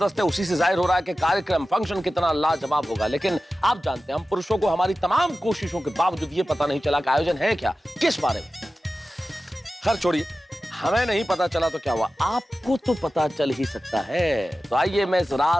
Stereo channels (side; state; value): both; normal; correlation 0.94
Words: है। उसी से जाहिर हो रहा है कि कार्यक्रम फंक्शन कितना लाजवाब होगा। लेकिन आप जानते हैं, हम पुरुषों को हमारी तमाम कोशिशों के बावजूद ये पता नहीं चला कि आयोजन है क्या, किस बारे में। खैर छोड़िए, हमें नहीं पता चला तो क्या हुआ, आपको तो पता चल ही सकता है। तो आइए मैं इस